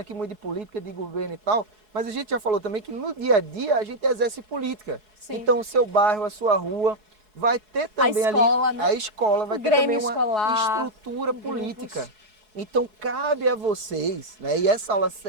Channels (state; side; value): late; left; 4.7 ms